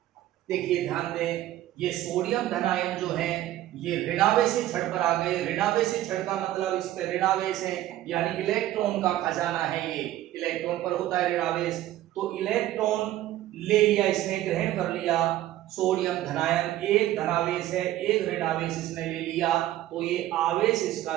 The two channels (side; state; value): left; quieter; 14.1 dB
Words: देखिए ध्यान दें, ये सोडियम धनायन जो है ये ऋणावेशित छड़ पर आ गए। ऋणावेशित छड़ का मतलब इस पे ऋणावेश है यानी इलेक्ट्रॉन का खजाना है, ये इलेक्ट्रॉन पर होता है ऋणावेश। तो इलेक्ट्रॉन ले लिया, इसने ग्रहण कर लिया सोडियम धनायन, एक धनावेश है एक ऋणावेश इसने ले लिया, तो ये आवेश